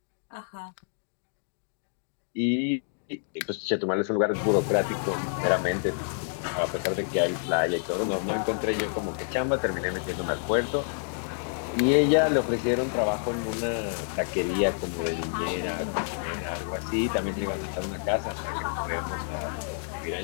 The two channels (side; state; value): right; silent; digital silence